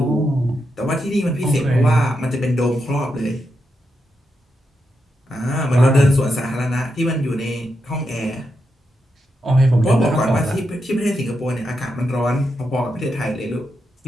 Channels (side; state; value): both; normal; correlation 0.85